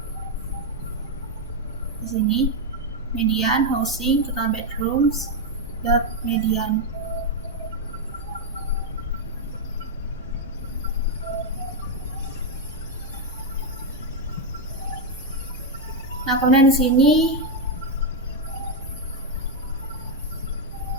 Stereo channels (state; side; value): normal; both; correlation 0.03